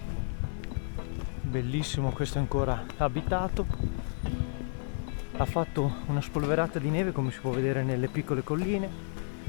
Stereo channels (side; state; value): right; silent; digital silence